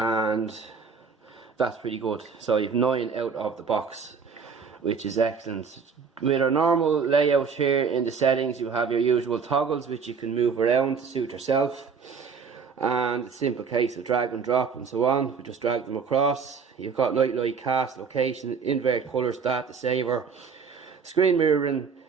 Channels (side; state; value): left; quieter; 5.8 dB